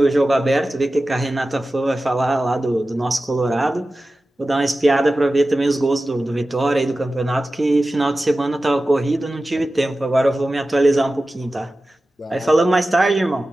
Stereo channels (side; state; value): both; normal; correlation 0.95